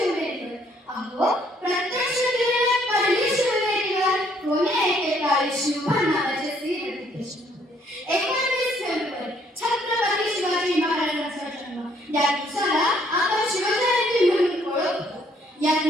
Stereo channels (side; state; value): both; normal; correlation 0.66